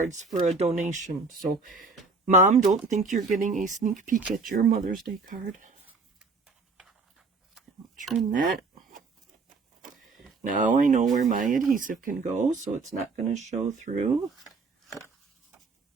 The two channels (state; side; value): quieter; left; 4.1 dB